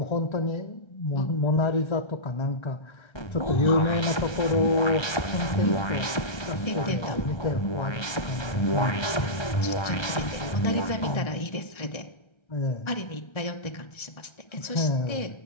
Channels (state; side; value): late; right; 1.3 ms